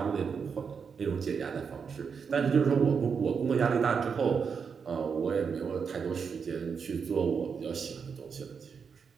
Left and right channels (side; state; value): left; quieter; 6.1 dB